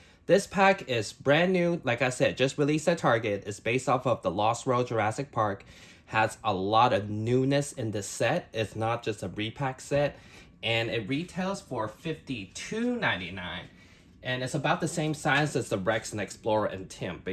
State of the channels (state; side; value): identical; both; correlation 1.00